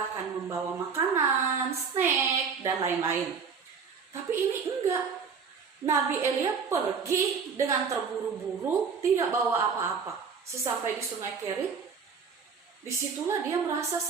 akan membawa makanan, snack, dan lain-lain. Tapi ini enggak. Nabi Elia pergi dengan terburu-buru, tidak bawa apa-apa. Sesampai di sungai Kerit, disitulah dia merasa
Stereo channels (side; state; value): left; quieter; 5.8 dB